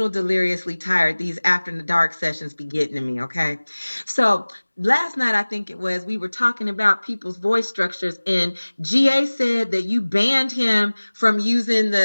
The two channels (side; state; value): both; inverted; correlation -1.00